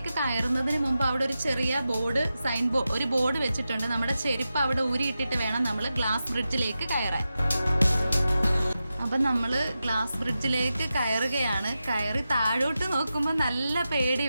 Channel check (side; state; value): both; inverted; correlation -0.91